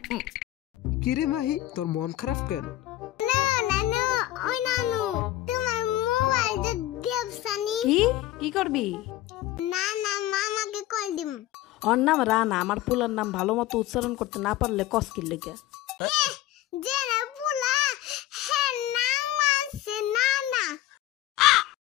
কিরে মাহি, তোর মন খারাপ কেন? না নানু, ওই নানু তোমার মোবাইলটা দেবসানি। কি করবি? না না, মামাকে কল দিম। ওর নাম রানা, আমার পুলার নাম ভালো মতো উচ্চারণ করতে না পারলে কস্কির লেগে। যে না পুলা হ্যাঁ নাম আছে না না।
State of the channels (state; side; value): quieter; right; 14.7 dB